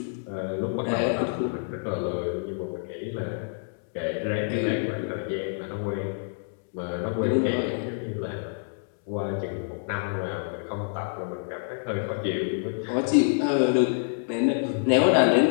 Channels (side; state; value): right; silent; 60 dB below the other